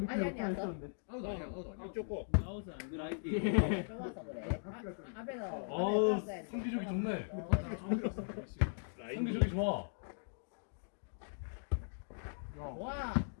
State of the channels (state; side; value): silent; right; digital silence